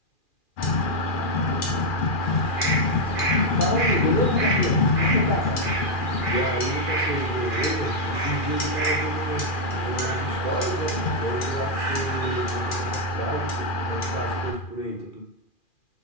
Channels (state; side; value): late; right; 2.4 ms